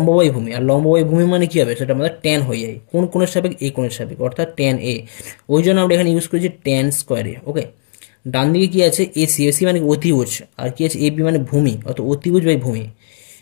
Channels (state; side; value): silent; right; digital silence